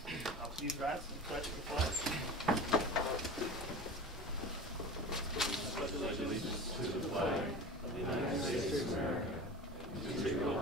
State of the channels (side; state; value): both; normal; correlation 0.34